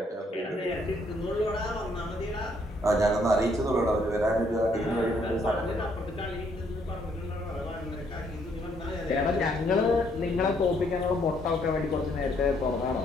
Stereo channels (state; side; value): normal; both; correlation 0.69